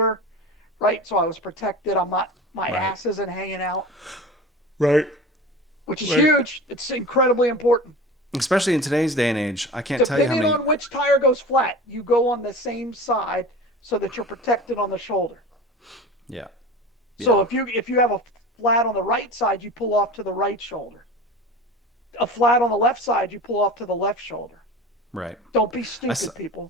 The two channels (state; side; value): normal; both; correlation 0.34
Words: right? So I was protected. My Right, ass isn't hanging out, right, which is right. huge. It's incredibly important. Especially in today's day and age, I can't tell you how Depending many. on which tire goes flat, you go on the same side so that you're protected on the shoulder. Yeah, So yeah, if you have a flat on the right side, you pull off to the right shoulder. A flat on the left side, you pull off to the left shoulder. right. Don't be I saw, stupid,